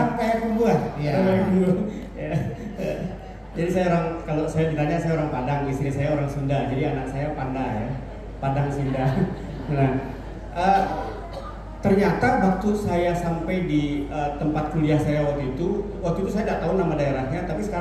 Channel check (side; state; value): both; identical; correlation 1.00